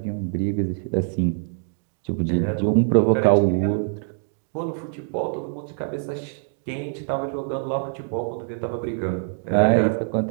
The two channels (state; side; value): silent; left; digital silence